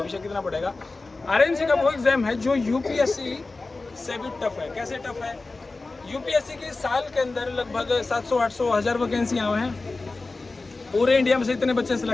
कितना बढ़ेगा। RAMC का वो एग्जाम है जो UPSC से भी टफ है। कैसे टफ है? UPSC की साल के अंदर लगभग 700, 800, 1000 वैकेंसियाँ हैं। पूरे इंडिया में से इतने बच्चे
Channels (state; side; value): quieter; right; 3.5 dB